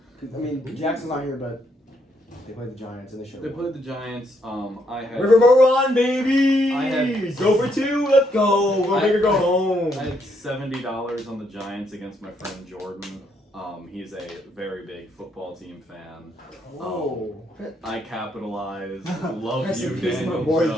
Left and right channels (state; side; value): normal; both; correlation 0.74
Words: Jackson's not here, but they played the Giants and they showed. They played the Giants. I had Riverboat Run, baby! I had- Go for 2, let's go! Go big or go home! I had $70 on the Giants against my friend Jordan. He's a very big football team fan. Oh. I capitalized. Love Rest you, in peace, my Daniel boy